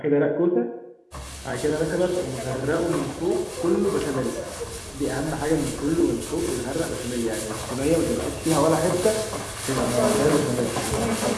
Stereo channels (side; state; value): both; identical; correlation 1.00